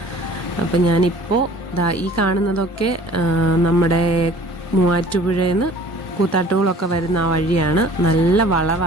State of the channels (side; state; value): both; normal; correlation 0.49